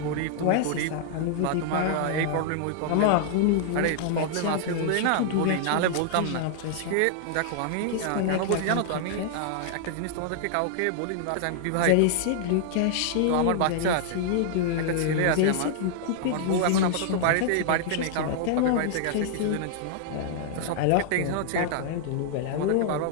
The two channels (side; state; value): both; different; correlation -0.01